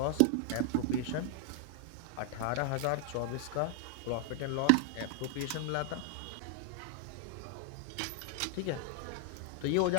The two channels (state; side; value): different; both; correlation 0.00